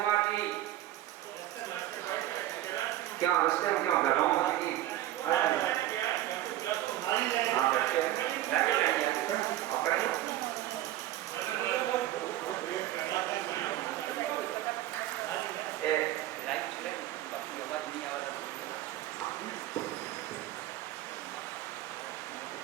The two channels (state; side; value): quieter; left; 14.0 dB